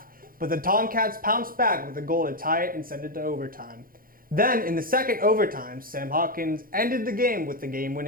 but the Tomcats pounced back with a goal to tie it and send it to overtime. Then, in the second overtime, Sam Hawkins ended the game with the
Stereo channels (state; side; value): late; left; 0.42 ms